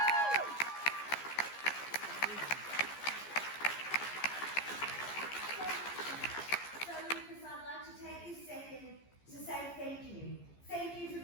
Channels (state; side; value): late; right; 14 ms